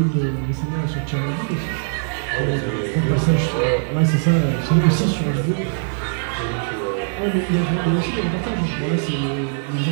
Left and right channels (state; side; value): silent; left; digital silence